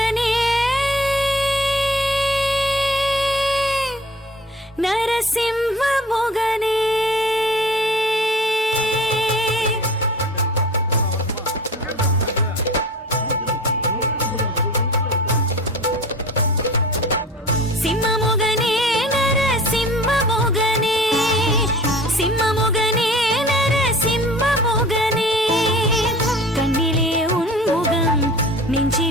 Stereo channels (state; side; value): normal; both; correlation 0.42